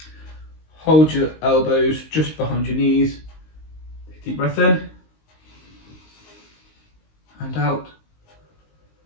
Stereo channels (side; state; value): right; late; 19 ms